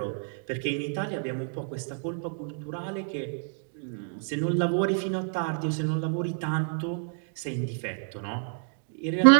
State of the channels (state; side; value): silent; left; 59 dB below the other